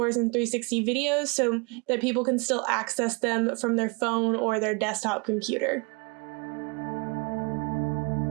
in 360 videos so that people can still access them from their phone or their desktop computer.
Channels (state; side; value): quieter; left; 31.7 dB